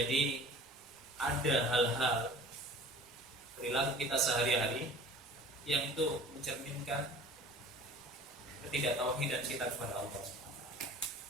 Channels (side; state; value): both; normal; correlation 0.45